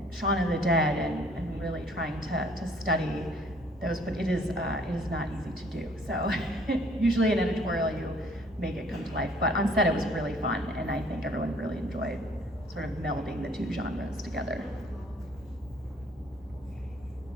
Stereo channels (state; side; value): normal; both; correlation 0.58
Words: Shaun of the Dead, and really trying to study those. But it is not easy to do. So usually in editorial you make it come to life. But on set it was really fun, and I think everyone really enjoyed sort of melding the two genres together.